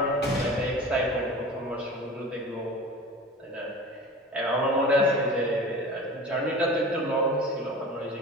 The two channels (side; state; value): both; normal; correlation 0.36